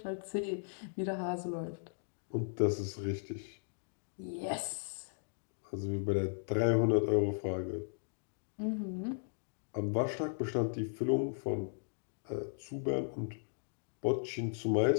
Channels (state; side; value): silent; right; digital silence